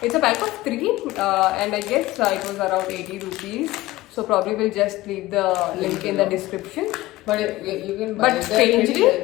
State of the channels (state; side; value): quieter; right; 17.8 dB